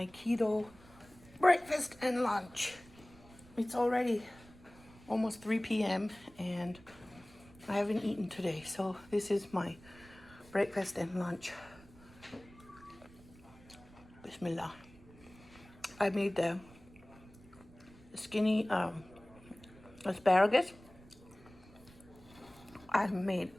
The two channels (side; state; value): right; noise; rumble, 23 dB below the sound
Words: keto breakfast and lunch. It's already almost 3 p.m. and I haven't eaten today, so this is my breakfast and lunch. Bismillah. I made the skinny asparagus. I made